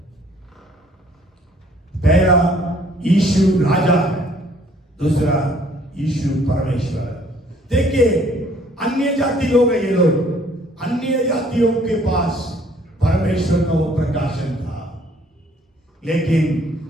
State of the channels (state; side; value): normal; both; correlation 0.60